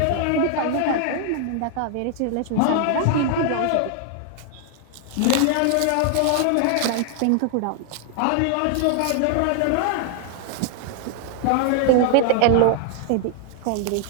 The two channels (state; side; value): different; both; correlation 0.00